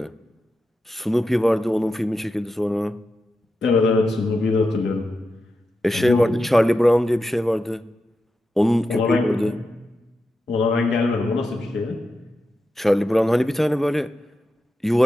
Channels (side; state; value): both; normal; correlation 0.89